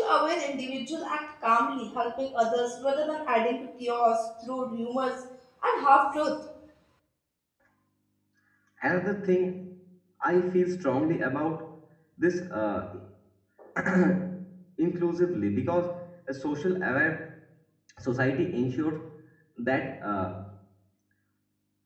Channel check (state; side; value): identical; both; correlation 1.00